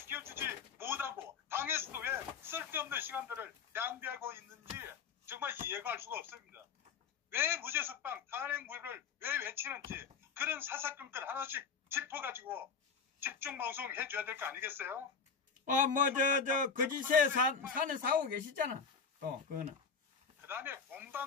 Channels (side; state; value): right; quieter; 5.8 dB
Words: 못하고 당에서도 왜 쓸데없는 시간들을 낭비하고 있는지 정말 이해가 할 수가 없습니다. 왜 무죄석방 탄핵무효를 왜 외치는지 그런 사사건건 하나씩 짚어가지고 집중방송 해줘야 될 거 아니겠어요? 거짓에 사는 사고 계시잖아. 또, 그거는. 그 다음에